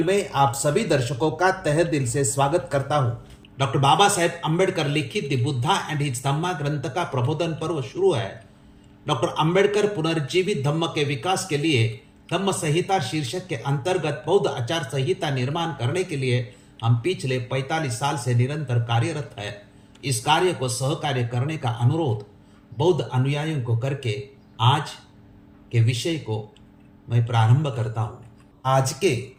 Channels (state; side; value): identical; both; correlation 1.00